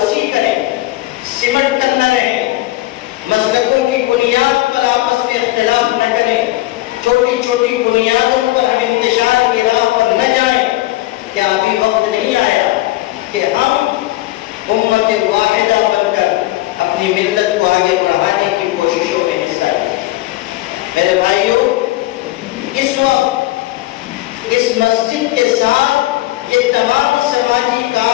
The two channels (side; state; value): right; quieter; 17.6 dB